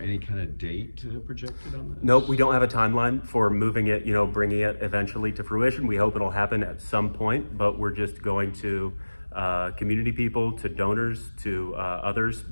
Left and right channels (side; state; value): both; inverted; correlation -1.00